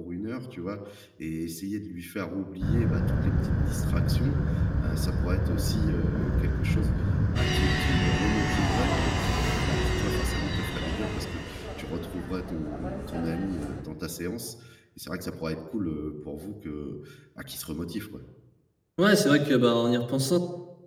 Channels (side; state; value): both; identical; correlation 1.00